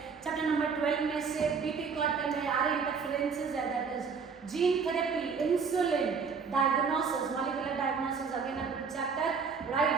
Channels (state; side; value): quieter; left; 5.6 dB